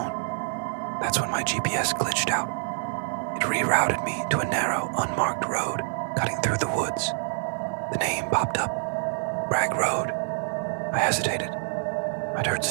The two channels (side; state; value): left; silent; digital silence